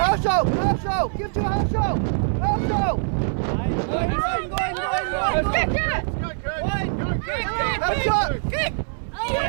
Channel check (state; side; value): silent; left; 62 dB below the other